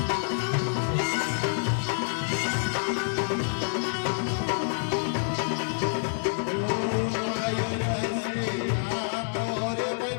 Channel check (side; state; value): right; silent; digital silence